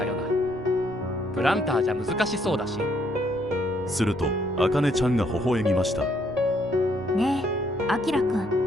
よな。プランターじゃ難しそうだし。するとあかねちゃんが微笑みました。ねえ、あきらく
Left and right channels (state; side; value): noise; right; rumble, 20 dB below the sound